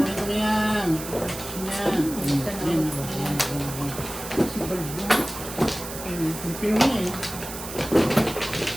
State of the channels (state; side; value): noise; right; hiss, 10 dB below the sound